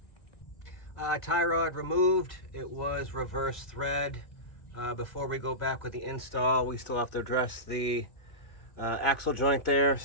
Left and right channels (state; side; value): late; right; 1.7 ms